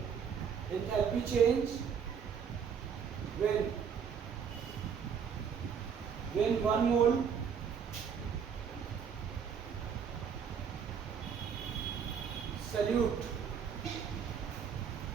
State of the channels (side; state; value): left; quieter; 7.1 dB